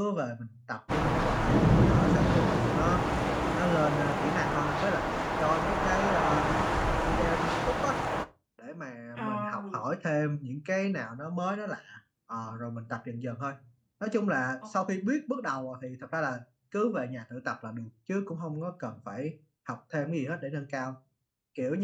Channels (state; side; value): identical; both; correlation 1.00